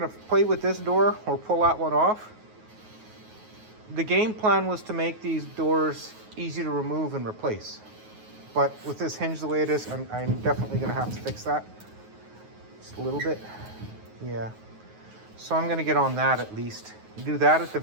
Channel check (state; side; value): late; left; 9.4 ms